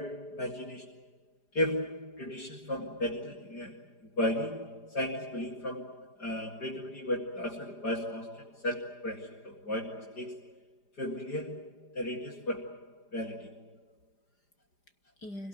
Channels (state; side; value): late; right; 4.9 ms